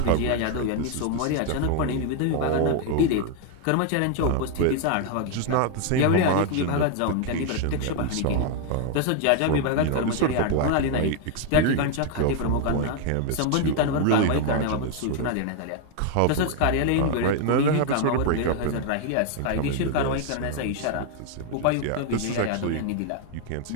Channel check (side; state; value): both; different; correlation 0.00